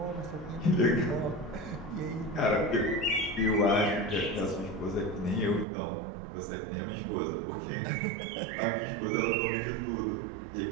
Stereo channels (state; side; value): drops out; left; at 5.7 s